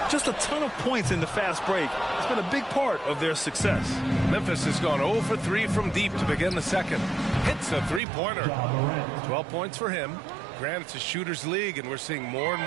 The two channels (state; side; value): drops out; left; at 8.0 s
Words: Just a ton of points in the fast break. It's been a big part of their success. Memphis has gone 0 for 3 from deep to begin the second. Hits a three-pointer. 12 points for him. Granted, it's a shooter's league, and we're seeing more and